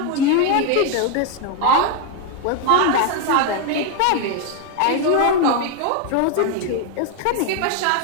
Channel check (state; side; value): different; both; correlation 0.01